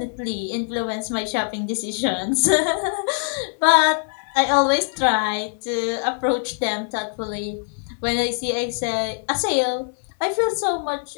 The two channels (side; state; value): right; silent; 61 dB below the other